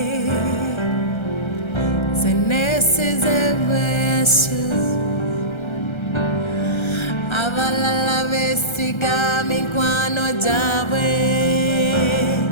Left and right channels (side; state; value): right; late; 1.3 ms